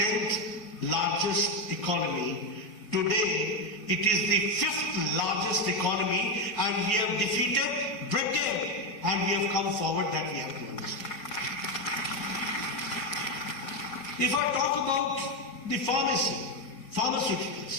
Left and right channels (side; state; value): right; late; 4.4 ms